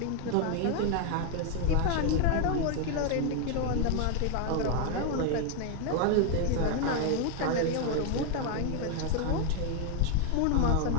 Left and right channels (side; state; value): both; different; correlation 0.01